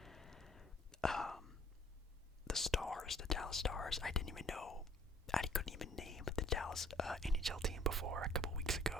the Stars, the Dallas Stars. I couldn't even name the Dallas NHL team before a couple weeks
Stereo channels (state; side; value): normal; both; correlation 0.57